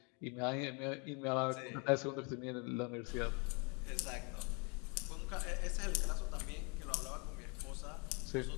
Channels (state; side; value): quieter; right; 33.6 dB